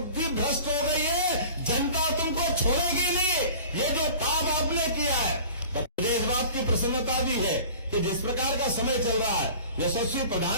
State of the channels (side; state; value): both; inverted; correlation -0.43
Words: भ्रष्ट हो गई है, जनता तुमको छोड़ेगी नहीं। ये जो पाप आपने किया है, मुझे इस बात की प्रसन्नता भी है कि जिस प्रकार का समय चल रहा है, यशस्वी